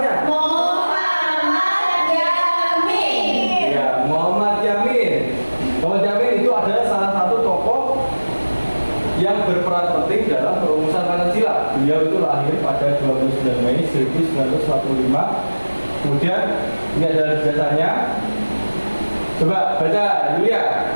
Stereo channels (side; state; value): both; inverted; correlation -1.00